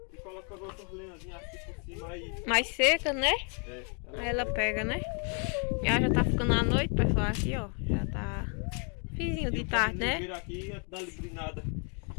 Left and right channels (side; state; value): right; quieter; 38.3 dB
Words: e colocando outras lenhazinhas aqui por cima aí. Mais seca, né? É, Aí ela pega, né? E ela já tá ficando à noite, pessoal, aqui, ó. Já tá fizinho de tarde, né? Vira aqui e dá librinada.